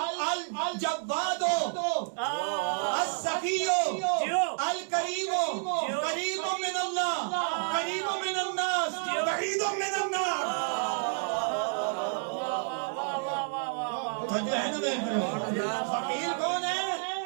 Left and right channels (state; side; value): silent; left; 58 dB below the other